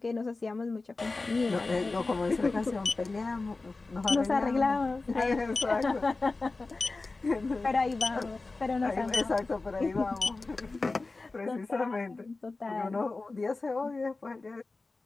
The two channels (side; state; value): right; quieter; 3.5 dB